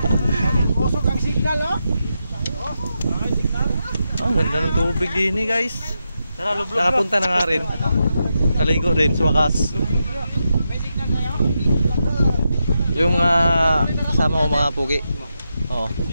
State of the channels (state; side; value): inverted; both; correlation -0.86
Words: Kusog ang signal, oh. Ang ganda ng tubig din eh, guys. Nakapunta na nga rin. Naligo rin sa wakas. Yung mga kasama ko mga pugi. Oh.